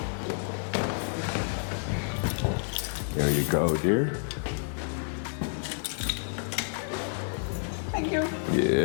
There you go, dear. Thank you.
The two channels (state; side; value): silent; right; digital silence